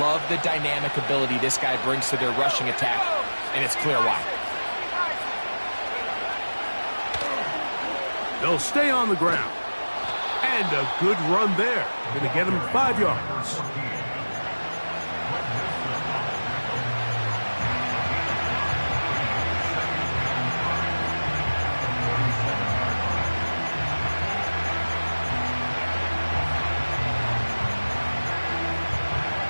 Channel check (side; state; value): both; inverted; correlation -1.00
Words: love the dynamic ability this guy brings to their rushing attack, and it's clear why. They'll stay on the ground. And a good run there. Going to get him 5 yards.